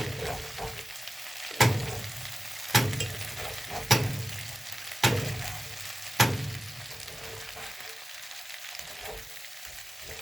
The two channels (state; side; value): normal; both; correlation 0.95